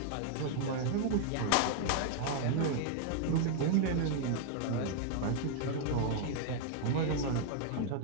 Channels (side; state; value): both; different; correlation 0.00